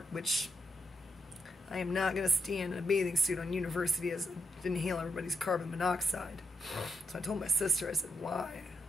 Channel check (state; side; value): normal; both; correlation 0.82